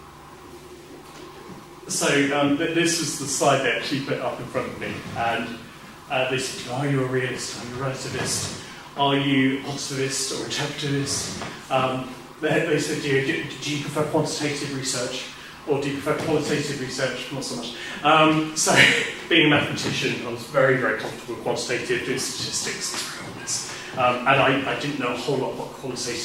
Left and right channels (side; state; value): both; identical; correlation 1.00